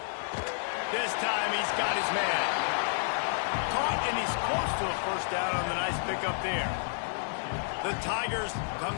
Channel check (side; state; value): right; silent; 58 dB below the other